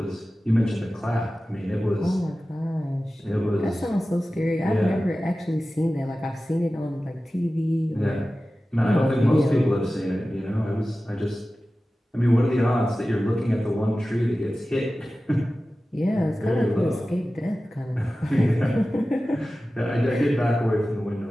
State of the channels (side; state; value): both; normal; correlation 0.95